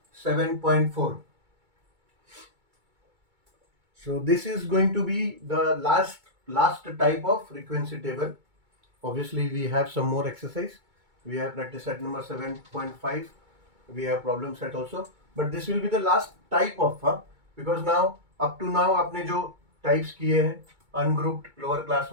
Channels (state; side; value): late; left; 2.2 ms